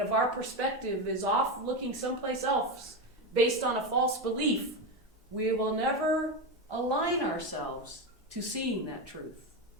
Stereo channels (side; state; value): both; normal; correlation 0.14